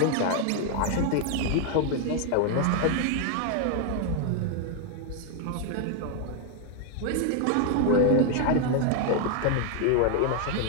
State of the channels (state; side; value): different; both; correlation 0.00